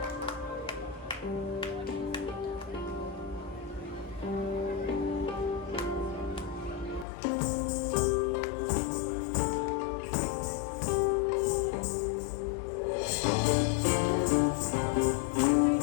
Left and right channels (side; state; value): right; drops out; at 7.1 s